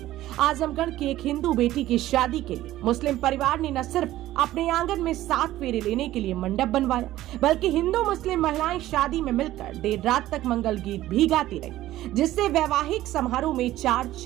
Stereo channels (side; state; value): left; quieter; 14.8 dB